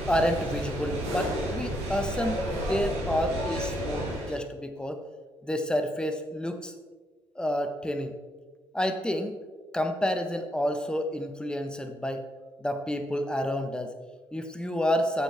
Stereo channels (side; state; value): both; normal; correlation 0.78